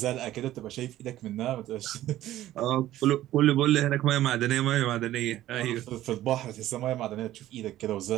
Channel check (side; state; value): left; quieter; 14.1 dB